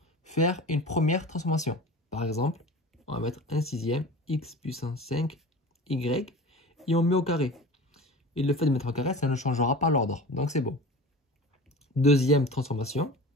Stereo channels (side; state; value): both; normal; correlation 0.35